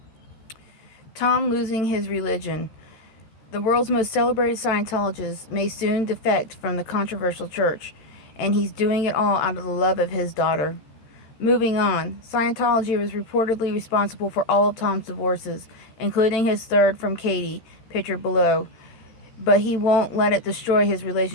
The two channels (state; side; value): late; right; 13 ms